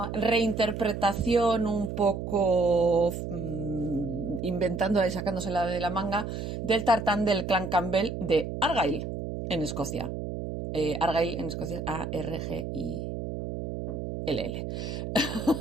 reinterpretación un poco inventándola y sacándosela de la manga del tartán del clan Campbell de Argyll en Escocia. Argyll en Escocia es A-R-G-I-L-L.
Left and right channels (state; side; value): noise; right; hum, 5 dB below the sound